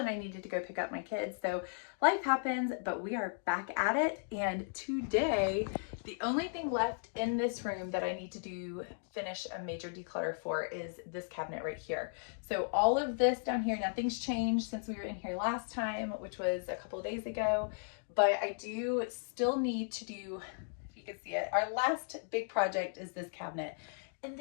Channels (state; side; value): silent; right; digital silence